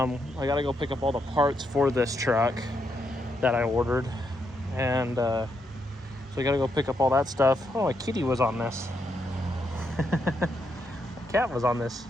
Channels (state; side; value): normal; both; correlation 0.79